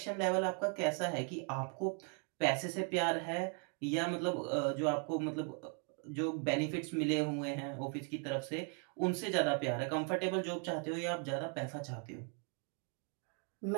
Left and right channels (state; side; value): quieter; left; 38.3 dB